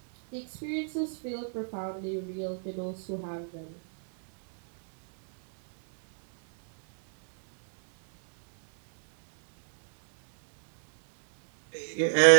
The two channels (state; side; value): silent; left; digital silence